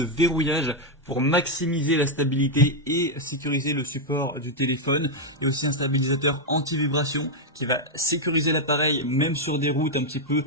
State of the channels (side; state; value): both; normal; correlation 0.00